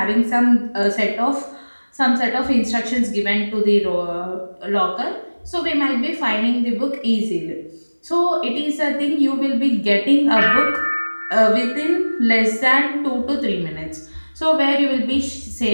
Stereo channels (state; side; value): inverted; both; correlation -1.00